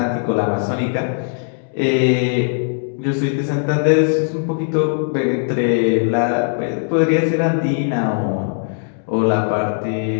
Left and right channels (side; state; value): right; silent; 63 dB below the other